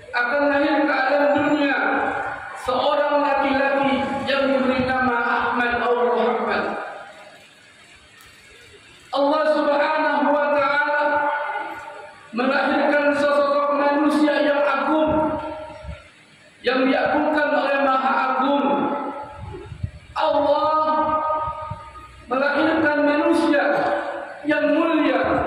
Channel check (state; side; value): identical; both; correlation 1.00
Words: akan lahir ke alam dunia seorang laki-laki yang diberi nama Ahmad atau Muhammad. Allah Subhanahu wa taala melahirkan sosok manusia yang agung, yang diagungkan oleh Maha Agung. Allah melahirkan manusia yang mulia,